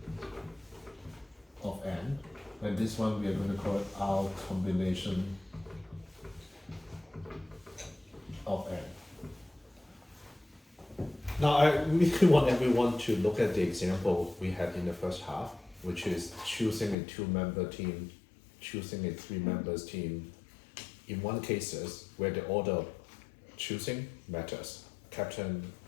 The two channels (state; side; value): drops out; right; at 16.9 s